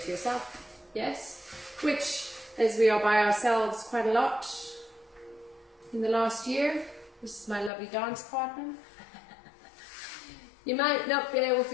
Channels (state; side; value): drops out; right; at 7.7 s